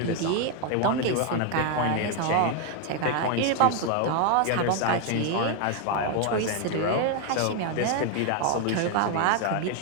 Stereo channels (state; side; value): different; both; correlation 0.01